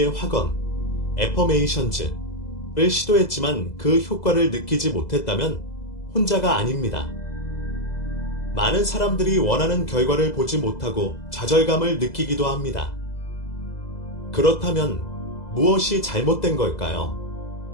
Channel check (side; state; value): right; late; 2.0 ms